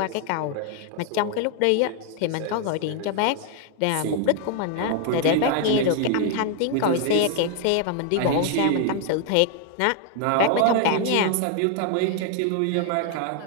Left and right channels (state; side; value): different; both; correlation 0.00